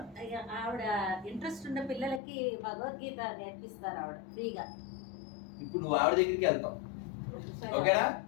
ఆవిడ ఇంట్రెస్ట్ ఉన్న పిల్లలకి భగవద్గీత నేర్పిస్తారు ఆవిడ ఫ్రీగా. ఇప్పుడు నువ్వు ఆవిడ దగ్గరికి వెళ్తావు. ఓకేనా?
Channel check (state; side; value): drops out; right; at 2.2 s